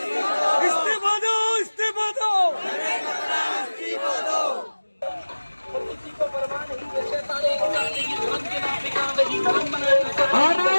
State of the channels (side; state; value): both; inverted; correlation -1.00